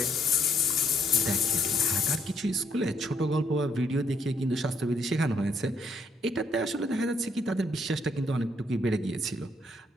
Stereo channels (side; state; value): both; normal; correlation 0.71